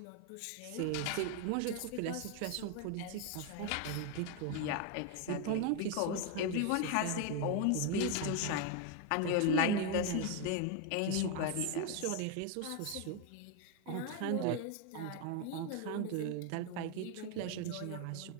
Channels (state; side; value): different; both; correlation 0.01